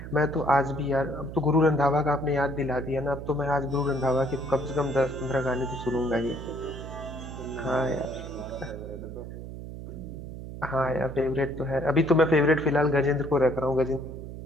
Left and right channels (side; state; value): right; noise; hum, 10 dB below the sound